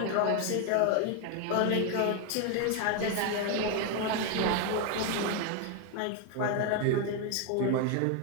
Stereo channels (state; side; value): different; both; correlation 0.01